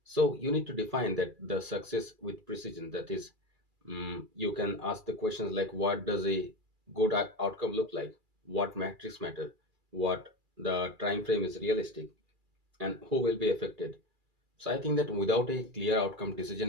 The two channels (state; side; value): late; left; 2.3 ms